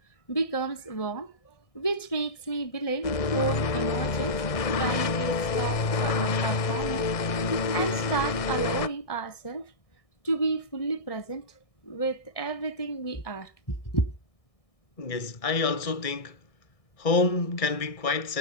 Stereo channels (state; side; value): late; right; 1.6 ms